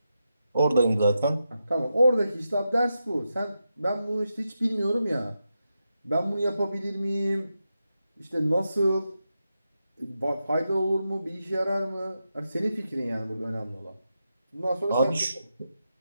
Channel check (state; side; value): inverted; both; correlation -0.87